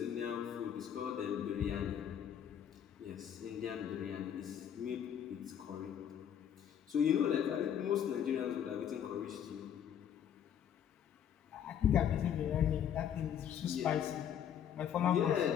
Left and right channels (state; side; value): quieter; right; 9.2 dB